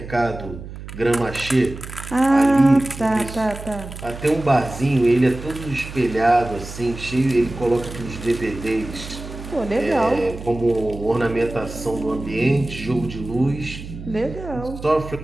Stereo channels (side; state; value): right; noise; hum, 12 dB below the sound